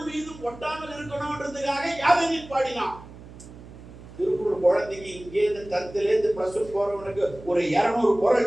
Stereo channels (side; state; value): right; noise; hum, 17 dB below the sound